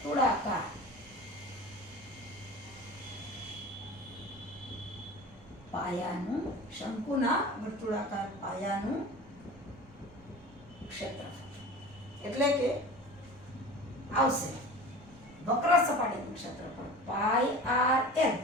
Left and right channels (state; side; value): normal; both; correlation 0.37